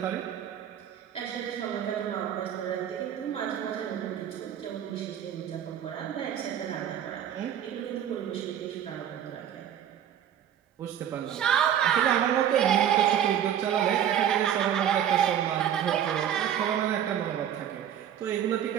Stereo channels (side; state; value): left; quieter; 9.8 dB